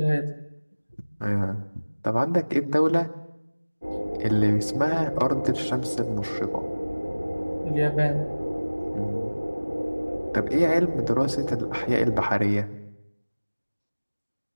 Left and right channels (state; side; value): inverted; both; correlation -1.00